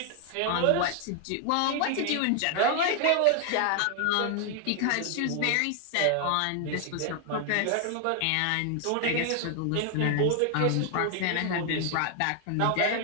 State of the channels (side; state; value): both; different; correlation 0.00